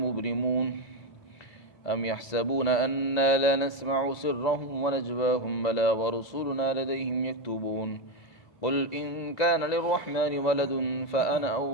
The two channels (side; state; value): right; late; 2.0 ms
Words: أم يحسبون أنا لا نسمع سرهم ونجواهم بلى ورسلنا لديهم يكتبون قل إن كان للرحمن ولد فأنا